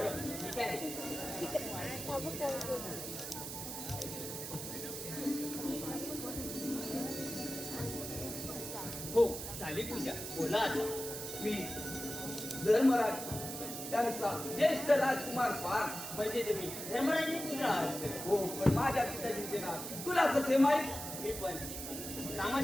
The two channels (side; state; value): right; noise; hiss, 7 dB below the sound